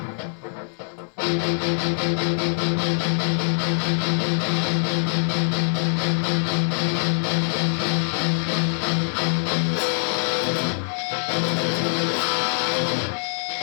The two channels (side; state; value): right; silent; 63 dB below the other